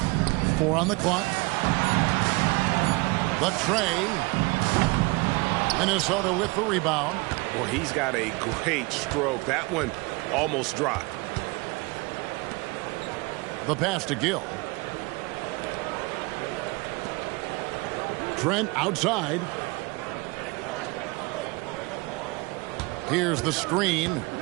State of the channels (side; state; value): left; quieter; 25.5 dB